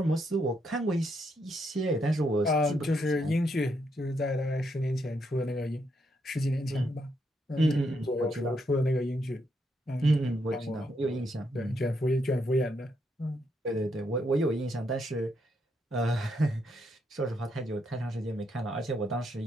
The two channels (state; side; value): normal; both; correlation 0.77